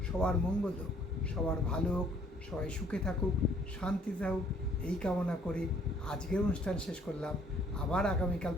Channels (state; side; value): normal; both; correlation 0.61